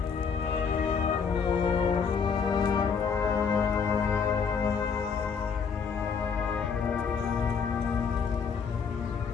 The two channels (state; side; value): quieter; right; 6.1 dB